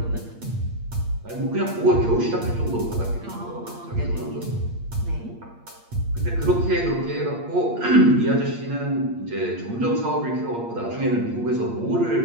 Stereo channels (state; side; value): late; left; 8.6 ms